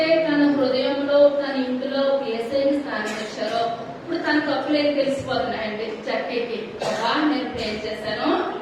తన హృదయంలో తన ఇంటిలో ఏసైని స్థానం ఇచ్చారో ఇప్పుడు తన తప్పులేని తెలిసిపోతున్నాయండి జక్కయ్యకి. నేను పే చేశాను,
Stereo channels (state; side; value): identical; both; correlation 1.00